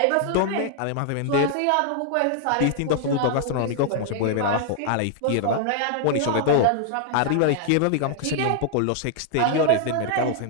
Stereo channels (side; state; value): both; different; correlation 0.00